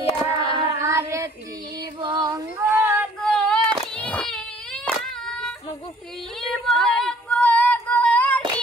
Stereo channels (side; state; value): both; normal; correlation 0.57